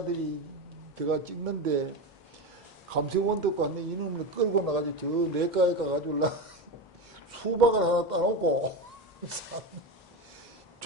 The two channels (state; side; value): normal; both; correlation 0.18